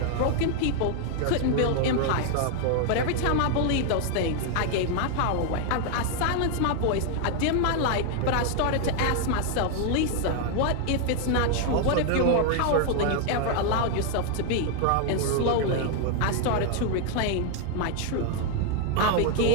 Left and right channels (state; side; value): different; both; correlation 0.00